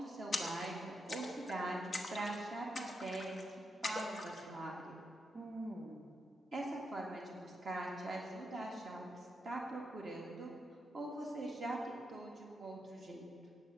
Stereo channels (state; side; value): normal; both; correlation 0.83